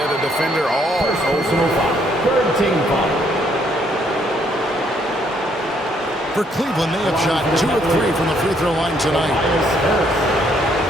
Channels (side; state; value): both; normal; correlation 0.69